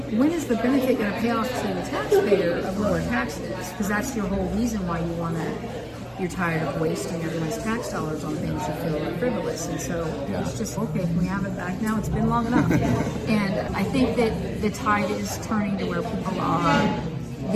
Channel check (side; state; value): both; identical; correlation 1.00